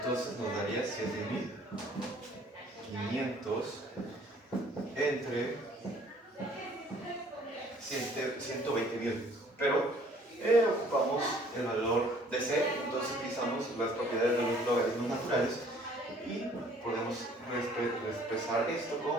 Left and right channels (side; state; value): both; normal; correlation 0.57